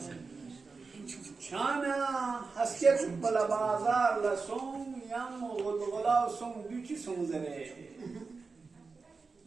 چانا هسکت بلا بازار لسون یم غلغلا سون دوچی سون زره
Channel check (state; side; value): quieter; left; 4.4 dB